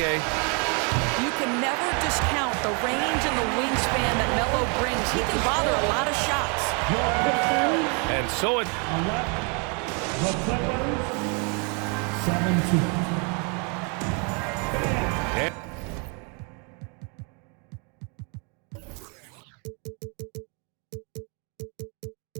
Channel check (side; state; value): left; quieter; 35.3 dB